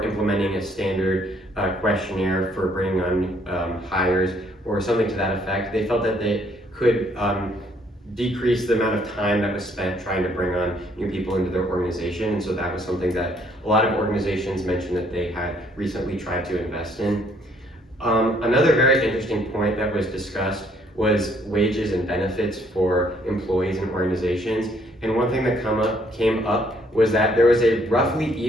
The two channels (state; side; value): normal; both; correlation 0.66